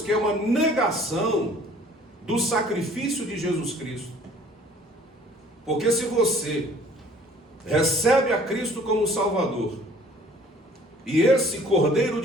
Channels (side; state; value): both; normal; correlation 0.54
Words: que é uma negação do sacrifício de Jesus Cristo. Porque se você recebe a Cristo como Salvador, e esse Cordeiro